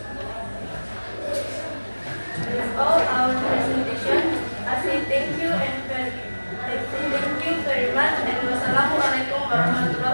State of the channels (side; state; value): both; inverted; correlation -1.00